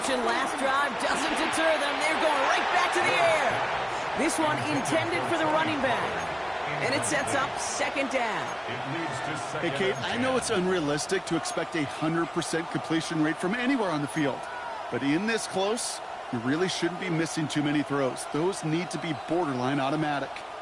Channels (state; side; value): identical; both; correlation 1.00